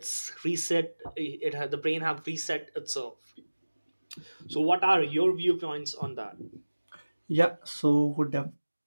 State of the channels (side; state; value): both; inverted; correlation -1.00